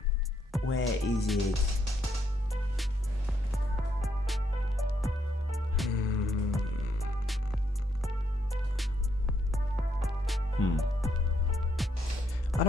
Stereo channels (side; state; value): both; normal; correlation 0.76